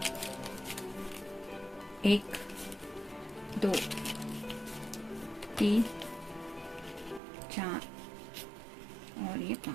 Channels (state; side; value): drops out; left; at 7.2 s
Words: एक, 2, 3, 4 और ये